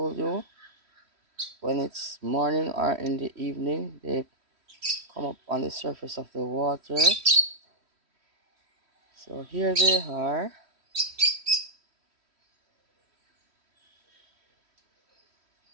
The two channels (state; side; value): late; left; 3.1 ms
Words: you, when it's morning or in the evening, they come up on the surface of the water. So here they are.